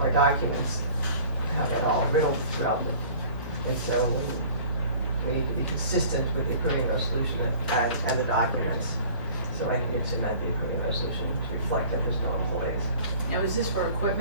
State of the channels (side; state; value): both; inverted; correlation -0.46